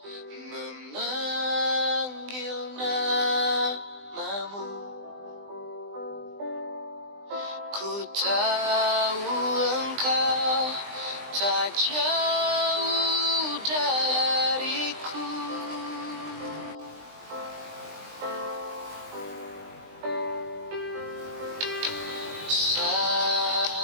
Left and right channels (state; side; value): late; left; 20 ms